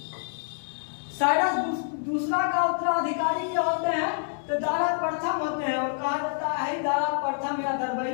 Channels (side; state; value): right; silent; 60 dB below the other